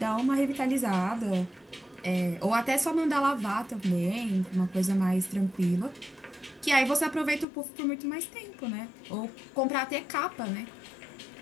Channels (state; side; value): drops out; right; at 7.5 s